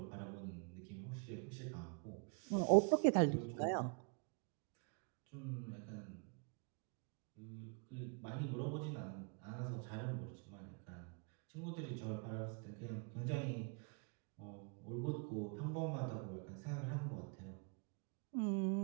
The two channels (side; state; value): left; quieter; 37.8 dB